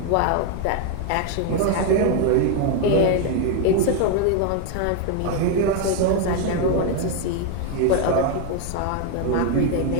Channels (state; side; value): different; both; correlation 0.01